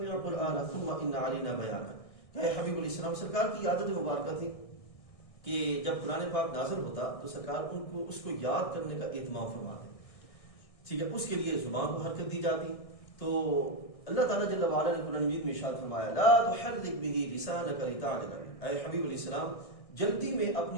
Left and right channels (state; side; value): late; right; 1.6 ms